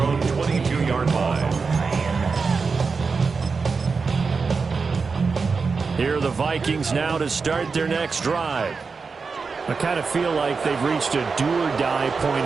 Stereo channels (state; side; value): quieter; left; 4.8 dB